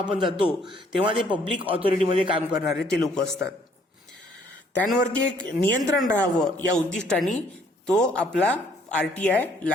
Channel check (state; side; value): normal; both; correlation 0.63